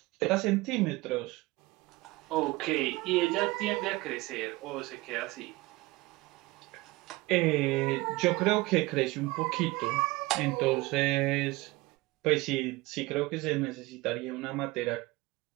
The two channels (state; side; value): quieter; left; 21.2 dB